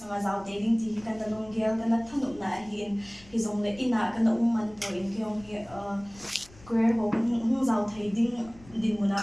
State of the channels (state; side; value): noise; left; rumble, 23 dB below the sound